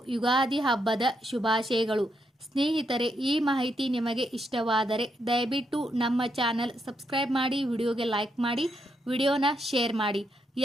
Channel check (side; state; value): both; normal; correlation 0.79